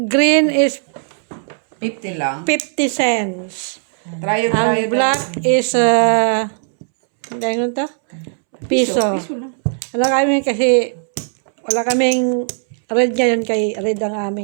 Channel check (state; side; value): silent; left; 68 dB below the other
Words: green is 50 lang. 50 cents. Trayo. Ang black is, hindi ano to? Piso. Piso lang. Wala kami kasi, wala kaming red ngayon kay red ang